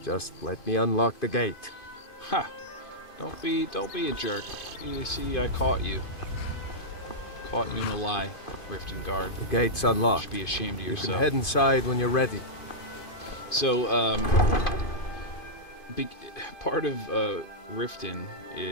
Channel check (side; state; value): right; late; 2.5 ms